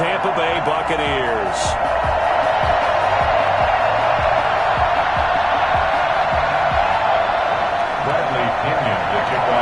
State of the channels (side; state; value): both; identical; correlation 1.00